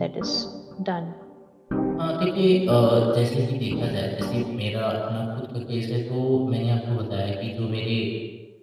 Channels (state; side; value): identical; both; correlation 1.00